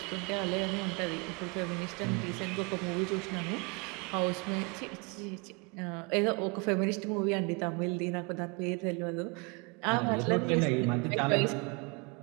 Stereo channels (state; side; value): quieter; left; 30.9 dB